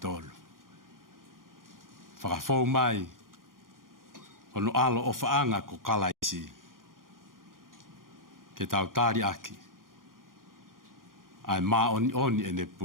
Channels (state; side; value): late; left; 0.90 ms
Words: tolu. Whakafou mai, ono alo o whaanga ko kalaisi, ke tau tāri aki, ai mā oni ene